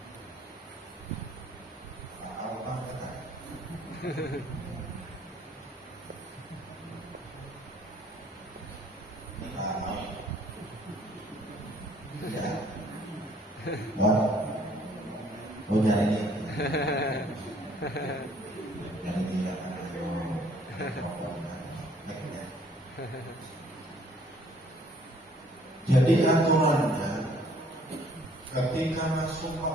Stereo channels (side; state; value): both; normal; correlation 0.60